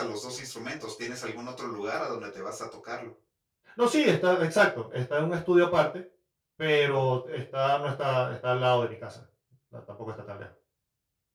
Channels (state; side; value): identical; both; correlation 1.00